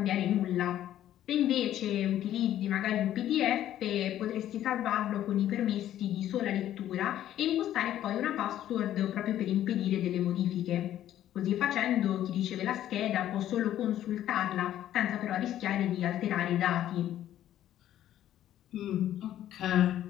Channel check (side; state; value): right; quieter; 12.1 dB